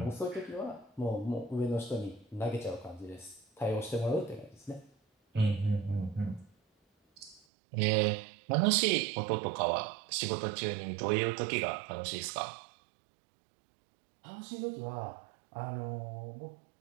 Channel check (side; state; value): left; drops out; at 7.4 s